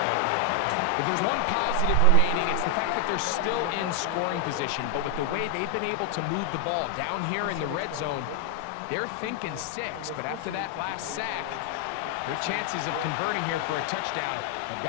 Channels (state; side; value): different; both; correlation 0.00